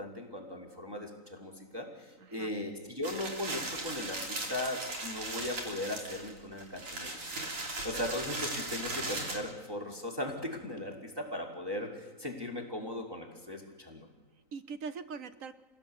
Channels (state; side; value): late; left; 3.9 ms